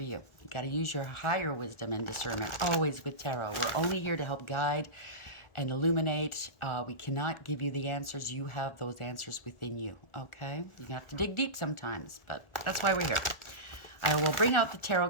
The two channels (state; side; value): late; right; 1.4 ms